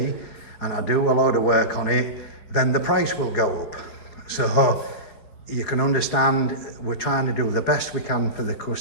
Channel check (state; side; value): late; right; 5.0 ms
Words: I do a load of work on it, then the price will go up. So you can understand we're trying to do the best we can for the